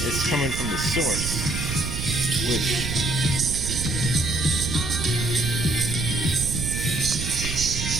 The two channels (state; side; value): noise; right; rumble, 4 dB below the sound